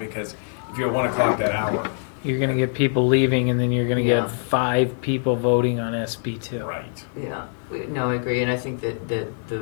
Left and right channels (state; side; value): silent; right; 63 dB below the other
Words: if you're at 1 o'clock that hour. You're gonna get people leaving, and then you're gonna Yeah. get 5 people voting on SB2. Right. Yeah, no, I agree, and I think that the